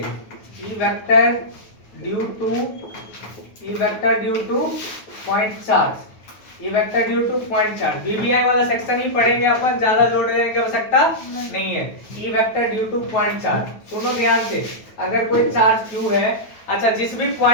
E vector due two point charge, BBI वाला सेक्शन ही पढ़ेंगे अपन, ज्यादा जोड़ देने की आवश्यकता नहीं है। E vector due two point charge, सुनो ध्यान से, अगर कोई चार्ज Q है, अच्छा जिस भी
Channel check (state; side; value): late; right; 9.3 ms